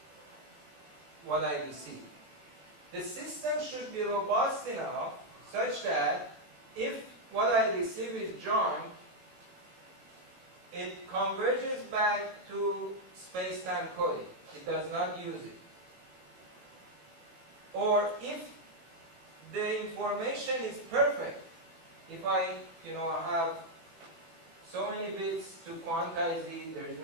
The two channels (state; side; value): late; left; 18 ms